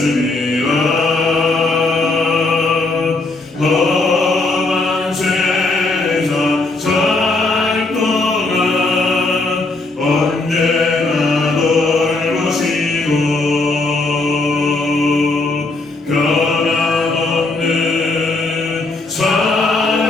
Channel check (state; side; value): quieter; right; 3.2 dB